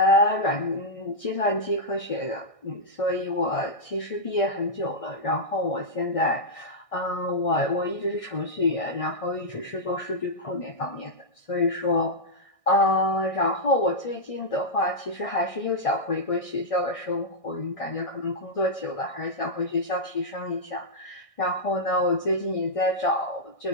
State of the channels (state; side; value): late; right; 1.6 ms